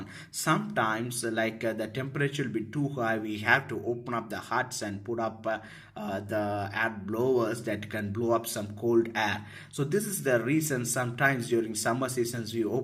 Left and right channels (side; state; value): both; identical; correlation 1.00